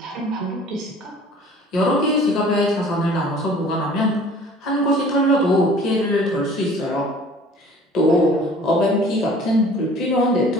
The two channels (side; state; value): both; normal; correlation 0.49